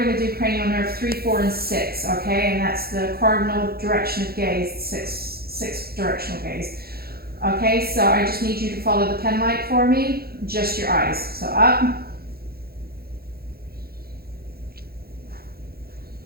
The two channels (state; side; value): late; left; 0.45 ms